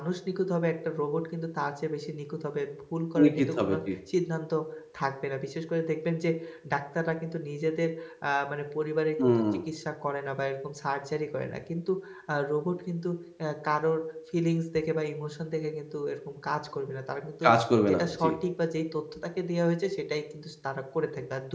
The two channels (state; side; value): identical; both; correlation 1.00